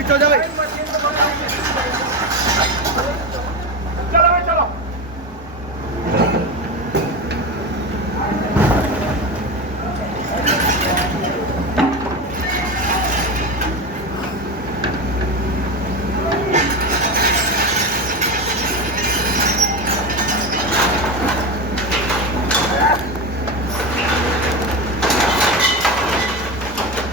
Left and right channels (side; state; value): both; normal; correlation 0.19